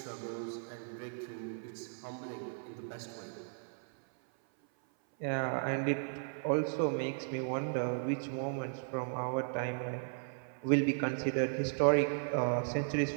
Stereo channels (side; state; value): left; silent; 54 dB below the other